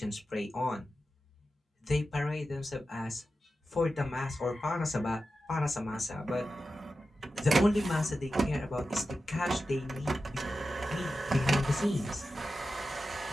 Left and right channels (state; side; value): normal; both; correlation 0.92